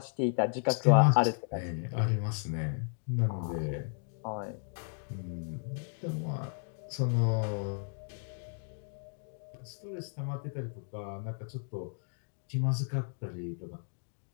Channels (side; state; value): right; silent; digital silence